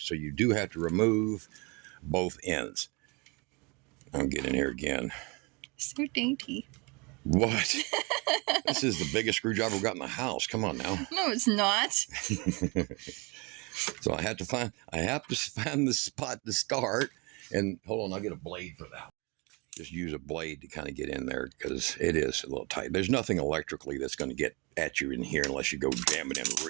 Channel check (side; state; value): left; quieter; 28.6 dB